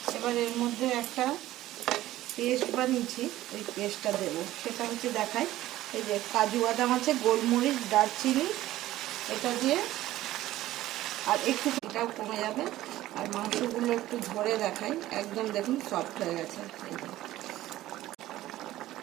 এবার এর মধ্যে একটা পেস্ট বানিয়েছি, এই পেস্টটা দেবো, সেটা হচ্ছে দেখাই। এই যে কাজু বাদাম আছে, গোলমরিচ, দারচিনি, এটা দিয়ে আর একটু এটাও কমে যাবে। আর মাংসগুলো একটু ধরে দেখাই, একদম দেখুন সফট হয়ে গেছে।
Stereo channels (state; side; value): quieter; left; 15.1 dB